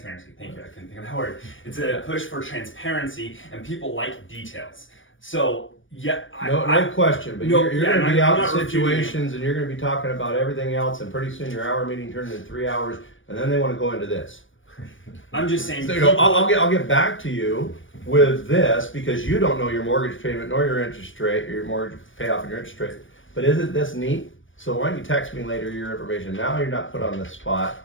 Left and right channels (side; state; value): right; late; 0.57 ms